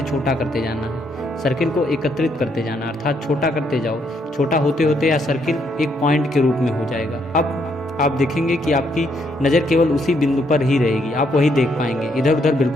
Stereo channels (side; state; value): both; normal; correlation 0.73